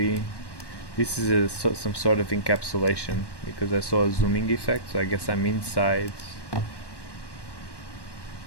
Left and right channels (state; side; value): late; right; 1.1 ms